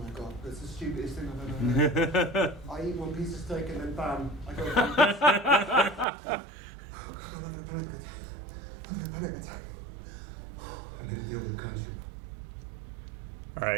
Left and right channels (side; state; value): left; drops out; at 6.1 s